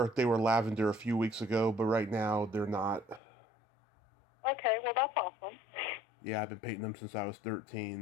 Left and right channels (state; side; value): drops out; right; at 3.2 s